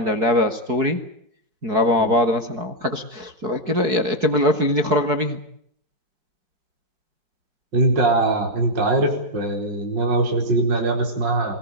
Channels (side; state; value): left; late; 4.7 ms